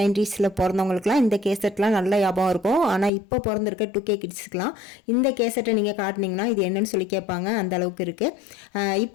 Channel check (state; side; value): drops out; right; at 3.1 s